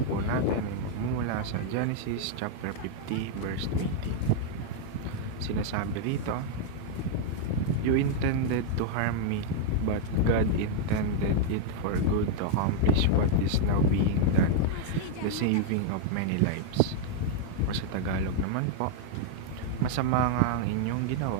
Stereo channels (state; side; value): different; both; correlation -0.01